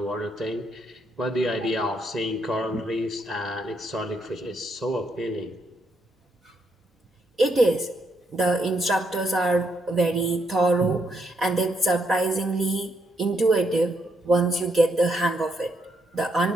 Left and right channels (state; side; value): normal; both; correlation 0.76